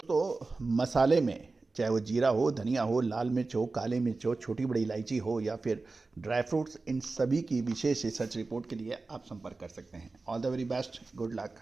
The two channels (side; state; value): left; quieter; 3.7 dB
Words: मसाले में चाहे वो जीरा हो, धनिया हो, लाल मिर्च हो, काले मिर्च हो, छोटी बड़ी इलायची हो या फिर ड्राई फ्रूट्स, इन सभी की विशेष रिसर्च रिपोर्ट के लिए आप संपर्क कर सकते हैं। All the very best, good luck,